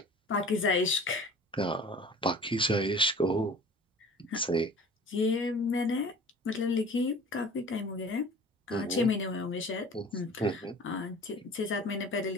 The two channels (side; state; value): both; normal; correlation 0.44